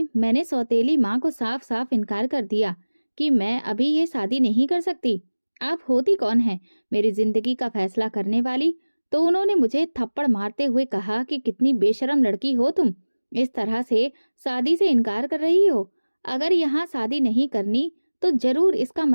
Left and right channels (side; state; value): both; inverted; correlation -1.00